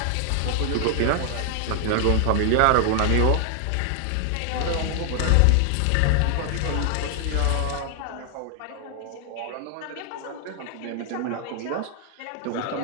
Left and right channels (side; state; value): both; different; correlation 0.00